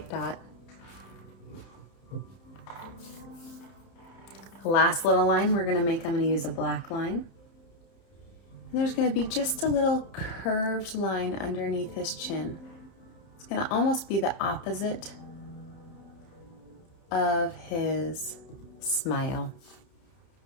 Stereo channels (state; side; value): late; right; 30 ms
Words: dot. The last little line we're going to make, I'm going to use a black line. And there's going to be just a little curved line underneath his chin. It's going to almost be the opposite of his smile.